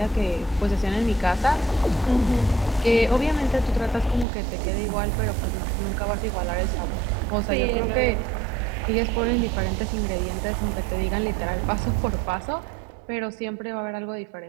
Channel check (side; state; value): left; drops out; at 4.2 s